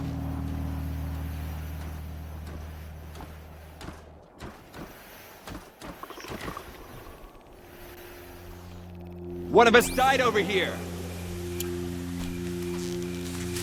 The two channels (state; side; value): identical; both; correlation 1.00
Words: One of us died over here.